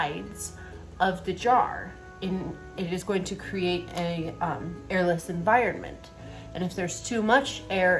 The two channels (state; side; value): identical; both; correlation 1.00